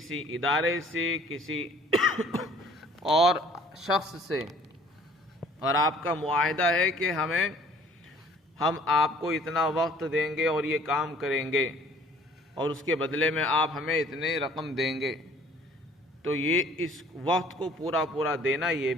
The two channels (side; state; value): both; normal; correlation 0.55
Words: ادارے سے، کسی اور شخص سے، اور آپ کا معاہدہ ہے کہ ہم آپ کو اتنا وقت دیں گے اور یہ کام کریں گے، اور اس کے بدلے میں آپ ہمیں اتنے رقم دیں گے، تو یہ اس وقت کو پورا پورا دینا یہ